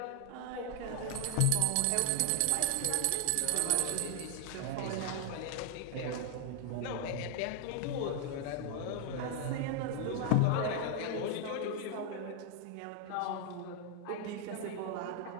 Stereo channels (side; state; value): both; different; correlation 0.00